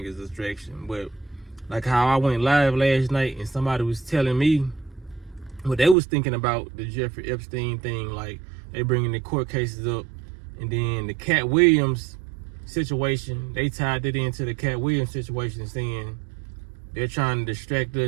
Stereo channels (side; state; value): left; drops out; at 6.0 s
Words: is a distraction. But like how I went live last night and somebody was telling me what they was thinking about the Jeffrey Epstein thing, like they bringing the court cases up, and then the Cat Williams situation, they tied it into the Cat Williams situation, saying they're trying to distract